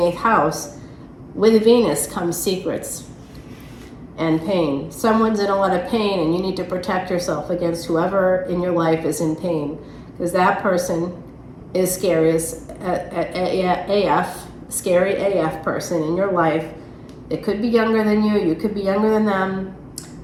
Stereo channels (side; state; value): both; identical; correlation 1.00